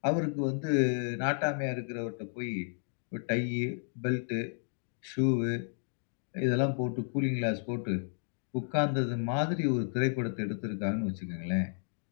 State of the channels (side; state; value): right; silent; digital silence